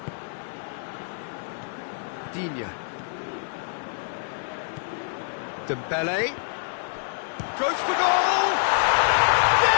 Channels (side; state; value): right; silent; digital silence